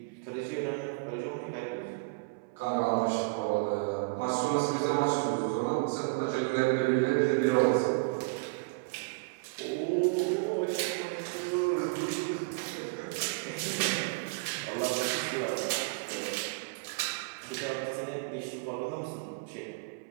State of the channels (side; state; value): left; quieter; 29.2 dB